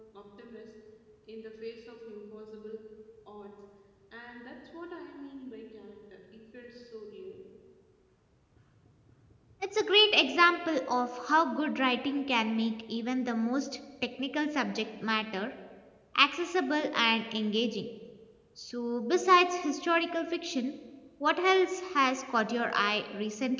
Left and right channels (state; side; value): identical; both; correlation 1.00